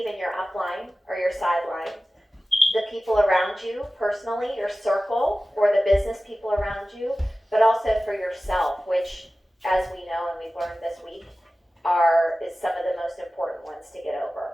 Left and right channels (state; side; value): normal; both; correlation 0.96